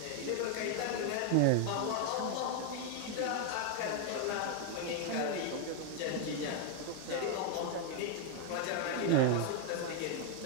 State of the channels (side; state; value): both; different; correlation 0.00